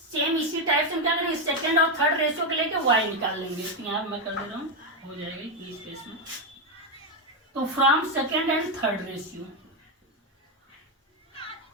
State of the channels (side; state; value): both; normal; correlation 0.06